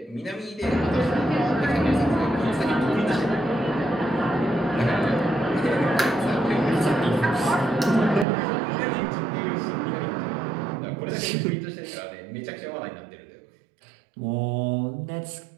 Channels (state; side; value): drops out; left; at 8.2 s